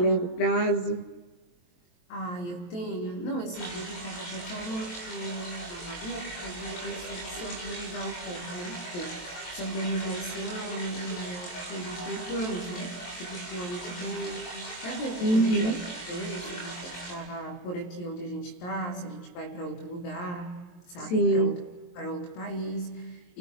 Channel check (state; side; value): late; right; 23 ms